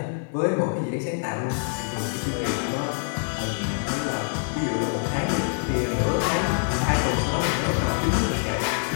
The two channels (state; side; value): silent; right; 59 dB below the other